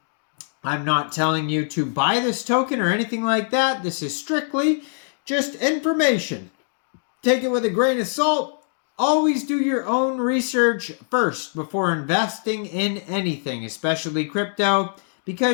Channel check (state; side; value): silent; right; 64 dB below the other